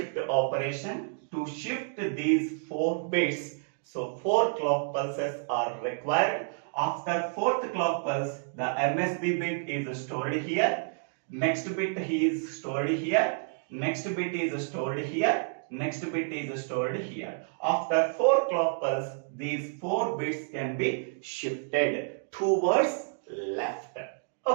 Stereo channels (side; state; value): left; silent; digital silence